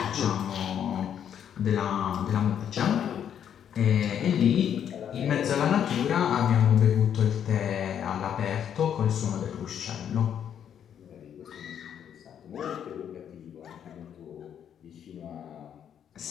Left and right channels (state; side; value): quieter; right; 9.0 dB